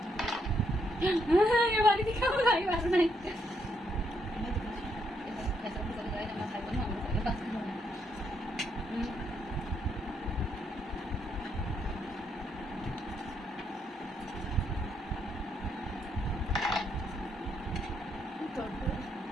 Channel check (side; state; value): both; normal; correlation 0.75